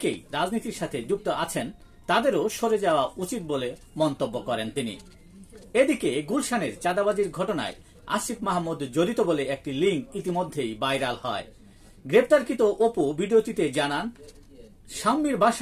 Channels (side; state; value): both; identical; correlation 1.00